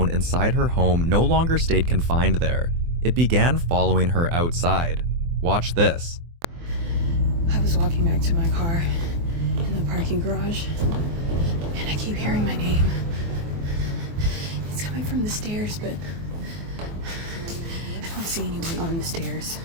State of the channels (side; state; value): left; late; 24 ms